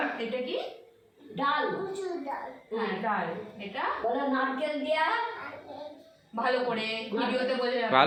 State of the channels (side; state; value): both; identical; correlation 1.00